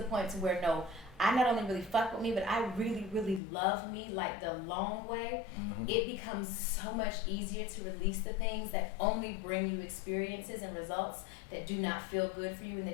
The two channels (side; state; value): right; drops out; at 3.4 s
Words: point to where, no, I not only really fuck with me, but I really, really love me like the long way, it becomes so much easier to release the things that only bring you experiences and results that do not feel good for you and